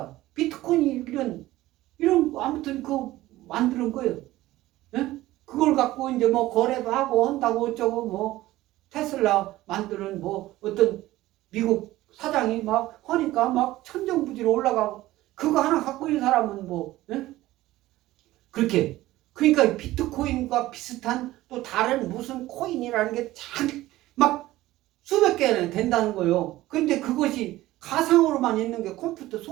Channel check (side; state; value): left; quieter; 16.5 dB